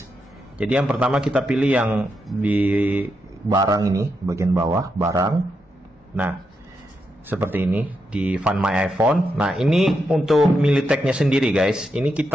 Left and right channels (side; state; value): both; normal; correlation 0.84